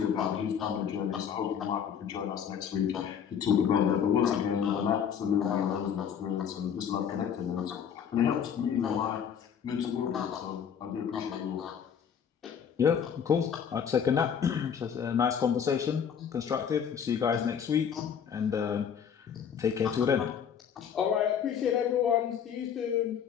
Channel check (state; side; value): quieter; right; 7.9 dB